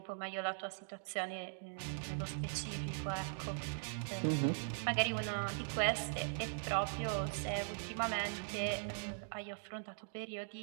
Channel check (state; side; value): silent; left; digital silence